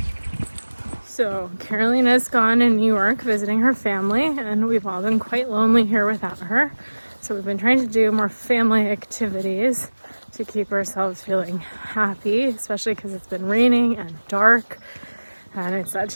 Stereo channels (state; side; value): inverted; both; correlation -1.00